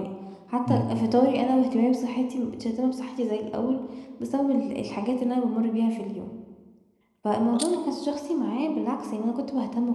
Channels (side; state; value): both; identical; correlation 1.00